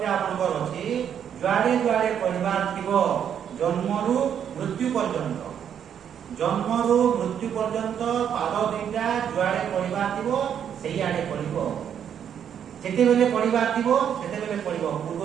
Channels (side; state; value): left; quieter; 8.7 dB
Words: আপনার আছে যুয়াড়ে যুয়াড়ে পড়িবার থিব জন্মরু মৃত্যু পর্যন্ত জন্মরু মৃত্যু পর্যন্ত পাদ দুইটা যুয়াড়ে পড়িবার থিব সেই আড়ে পড়িব যেতেবেলে পড়িবার থিব সেতেবেলে পড়িব